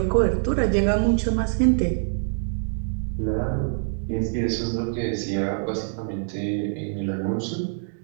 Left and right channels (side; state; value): left; silent; digital silence